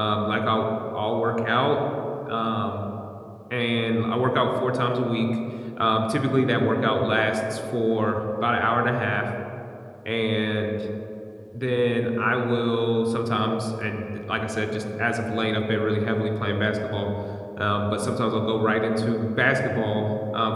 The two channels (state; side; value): identical; both; correlation 1.00